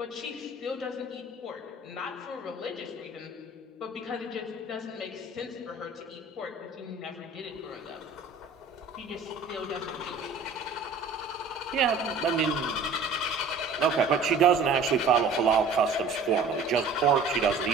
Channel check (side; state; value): left; quieter; 3.9 dB